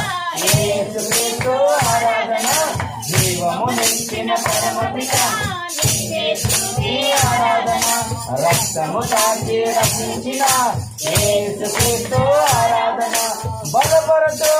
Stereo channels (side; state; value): both; identical; correlation 1.00